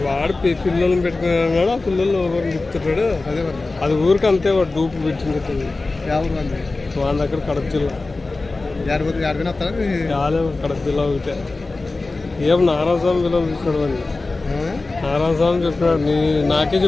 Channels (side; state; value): right; quieter; 3.4 dB